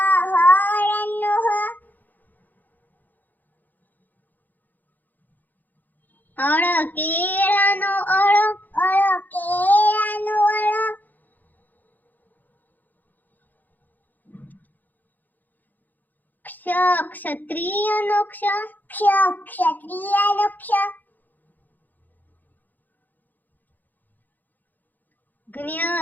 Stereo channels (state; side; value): late; right; 0.085 ms